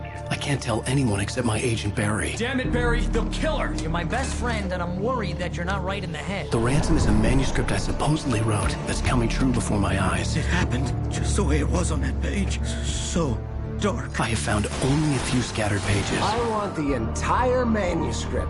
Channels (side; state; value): both; identical; correlation 1.00